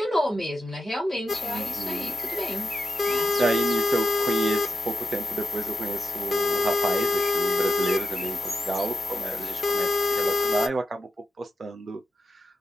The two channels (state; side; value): normal; both; correlation 0.89